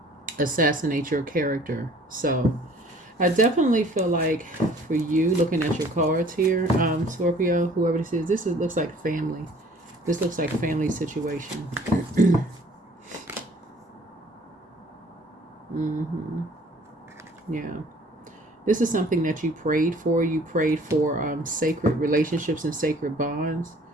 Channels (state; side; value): normal; both; correlation 0.54